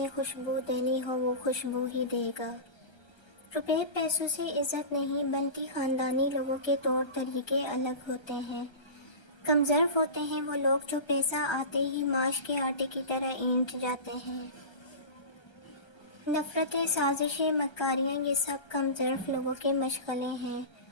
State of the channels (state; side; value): late; right; 1.3 ms